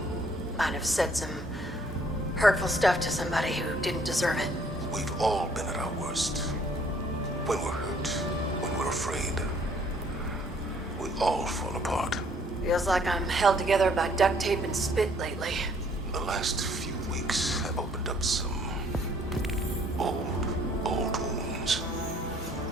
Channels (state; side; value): normal; both; correlation 0.62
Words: Might have said some hurtful stuff to somebody who didn't deserve it. We've all been at our worst. When we're hurt, when we're afraid, we all fall apart. Feels like I'm held together by duct tape and spit lately. The last few weeks have opened up some old wounds.